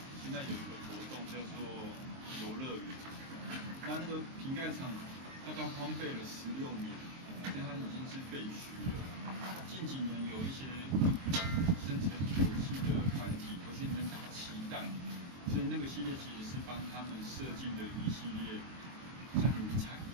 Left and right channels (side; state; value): left; late; 23 ms